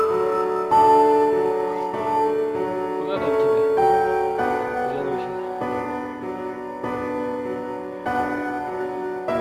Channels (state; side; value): identical; both; correlation 1.00